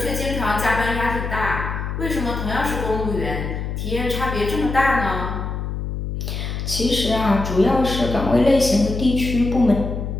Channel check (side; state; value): left; noise; hum, 4 dB below the sound